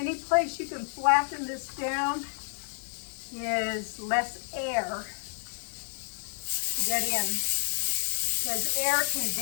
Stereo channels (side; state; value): right; silent; digital silence